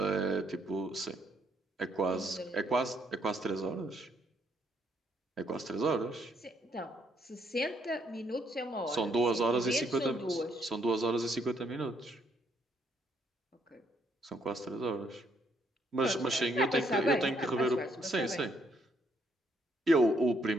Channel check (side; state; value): both; normal; correlation 0.72